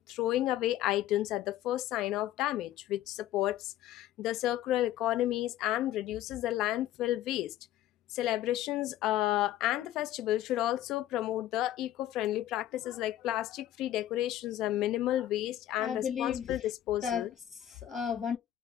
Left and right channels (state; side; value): quieter; right; 13.1 dB